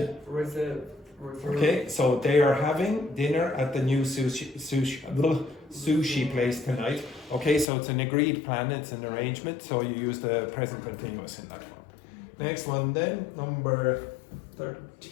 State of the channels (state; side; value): drops out; right; at 7.7 s